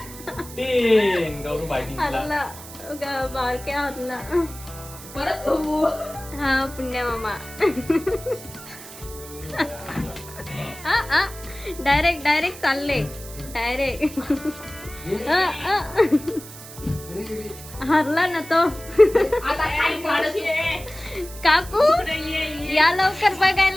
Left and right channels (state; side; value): noise; right; hiss, 15 dB below the sound